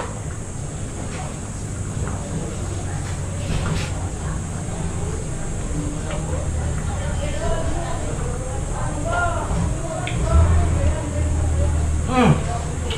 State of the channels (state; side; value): identical; both; correlation 1.00